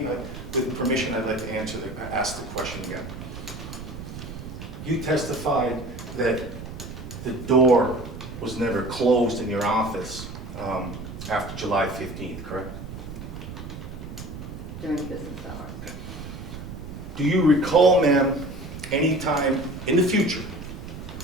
with permission, I'd like to ask the question again. You testified that the door was never closed in your office after July 15th, correct? During business hours. Do you recall, ma'am, any time in the future,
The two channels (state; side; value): noise; right; rumble, 10 dB below the sound